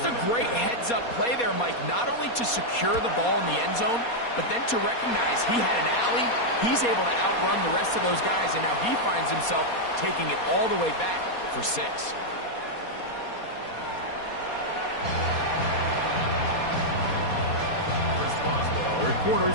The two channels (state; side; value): late; right; 4.2 ms